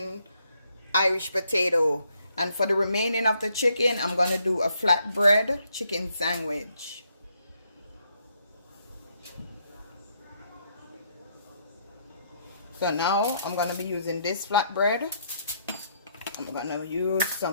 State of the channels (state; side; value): inverted; both; correlation -0.73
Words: Irish potato. And for the remaining of the chicken, I'm going to do a flatbread chicken sandwich. So now I'm going to be using this flatbread. I'm going to use